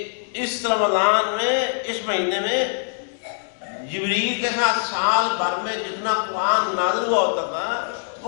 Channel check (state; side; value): silent; right; digital silence